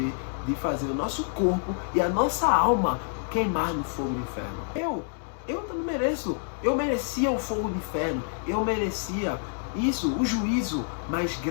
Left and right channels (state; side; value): silent; right; digital silence